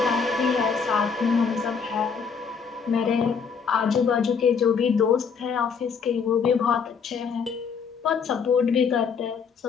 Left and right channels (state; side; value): quieter; right; 6.0 dB